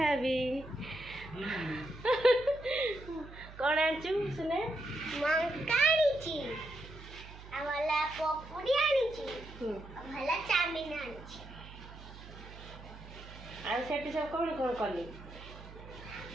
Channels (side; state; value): right; noise; hum, 16 dB below the sound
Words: हेबी। कौन आनचु सुने मंका आनीची आवाला पपुड़ी आनीची भला चाउमीन आनीची आ सेठी सब कौन कौन कली